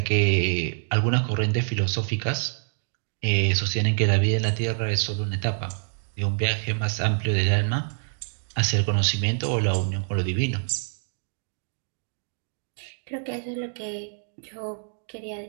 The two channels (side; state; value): left; silent; digital silence